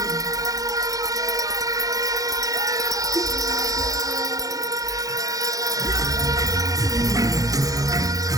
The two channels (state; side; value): late; left; 0.17 ms